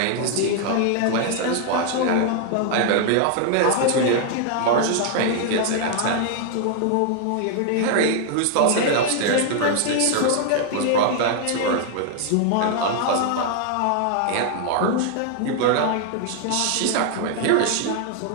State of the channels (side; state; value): both; different; correlation 0.00